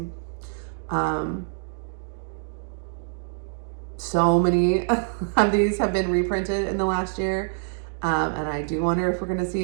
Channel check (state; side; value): silent; left; digital silence